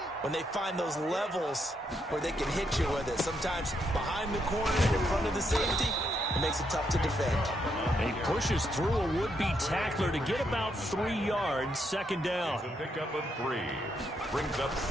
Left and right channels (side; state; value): both; normal; correlation 0.78